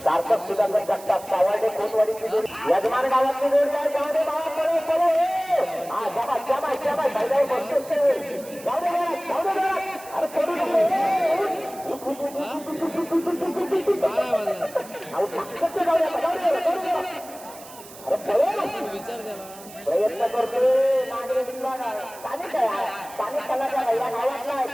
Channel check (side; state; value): right; noise; hiss, 18 dB below the sound